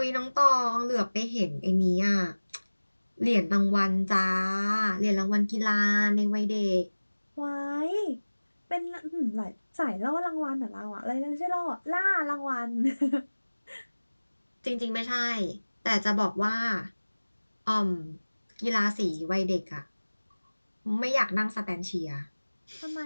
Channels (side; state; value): both; inverted; correlation -1.00